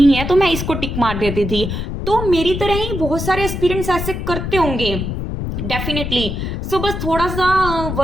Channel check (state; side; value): noise; left; rumble, 4 dB below the sound